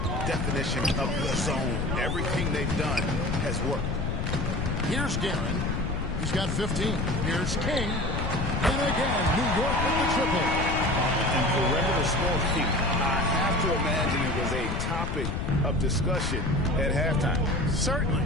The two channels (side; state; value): left; noise; rumble, 1 dB below the sound